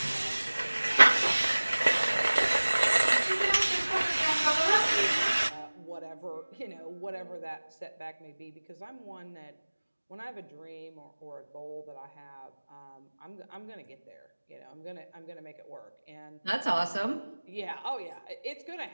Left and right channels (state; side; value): inverted; both; correlation -1.00